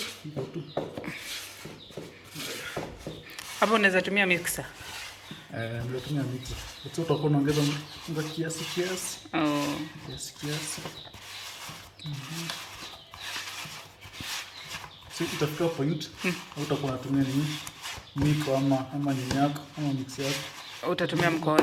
hivyo tu. Hapo unaweza tumia mixer. Ndio tumia mixer. Sasa utakuwa unaongeza unga kiasi. Oh. Kiasi. So itafika point utakuwa unatumia nini? Miko ama nyako ama mixer yako. Utatumia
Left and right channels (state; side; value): identical; both; correlation 1.00